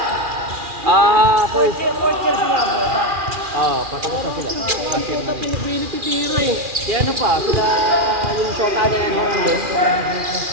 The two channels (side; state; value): left; late; 2.4 ms